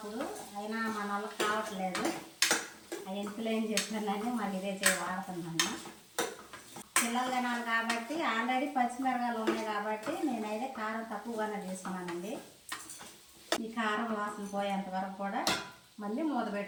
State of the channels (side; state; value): both; identical; correlation 1.00